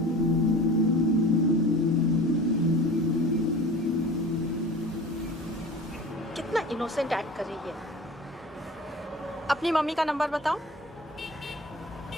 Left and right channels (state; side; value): normal; both; correlation 0.39